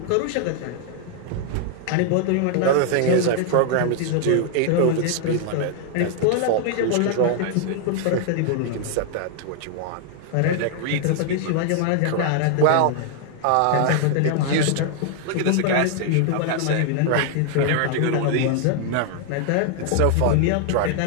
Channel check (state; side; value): different; both; correlation 0.00